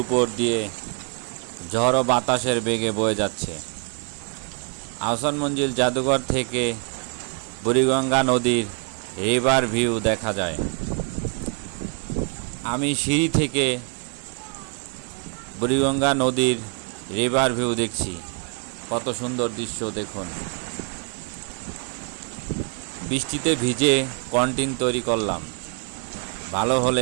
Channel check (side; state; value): left; quieter; 38.9 dB